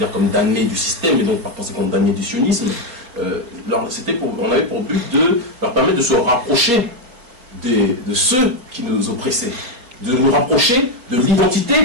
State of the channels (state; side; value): late; left; 4.2 ms